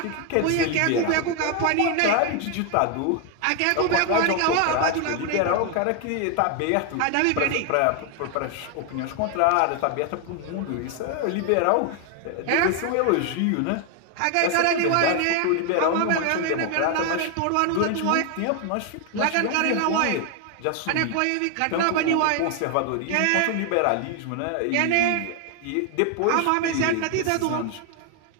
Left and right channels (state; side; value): different; both; correlation 0.01